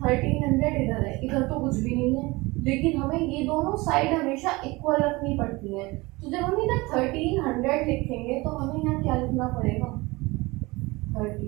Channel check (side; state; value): left; quieter; 22.9 dB